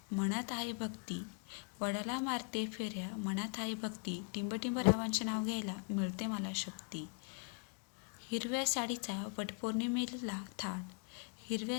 मनात आहे भक्ती, वडाला मारते फेऱ्या मनात आहे भक्ती, टिंबटिंब रावांचे नाव घ्यायला मिळते मला शक्ती. हिरव्या साडीचा वटपौर्णिमेला थाट,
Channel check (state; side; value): quieter; right; 34.5 dB